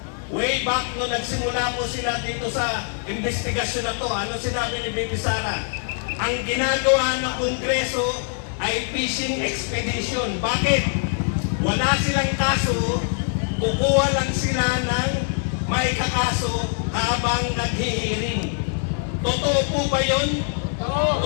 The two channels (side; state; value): right; silent; 57 dB below the other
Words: way back no nagsimula po sila dito sa investigasyon na to, ano sinabi ni Bibi Sara? Ang ginagawa ng Kongreso ay fishing expedition. Bakit? Wala silang kaso, kukuha lang sila ng may kakaso habang naghihiring. Totoo po ba yun?